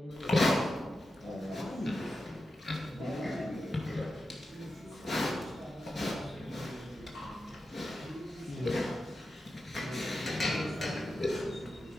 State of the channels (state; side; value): normal; both; correlation 0.90